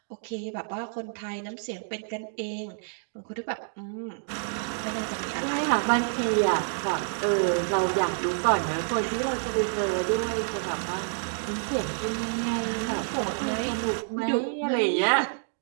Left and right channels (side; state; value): left; silent; digital silence